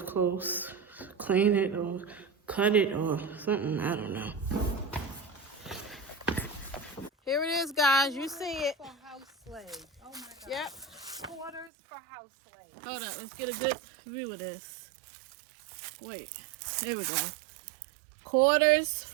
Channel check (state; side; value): drops out; left; at 11.7 s